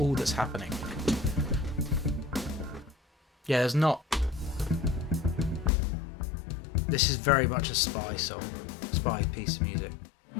that's happening. Yeah, there's not. This is very much a Spy song, Spy piece of music.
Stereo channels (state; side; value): drops out; right; at 5.7 s